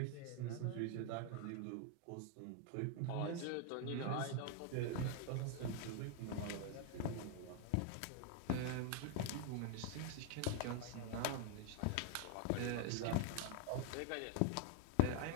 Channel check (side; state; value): both; different; correlation 0.00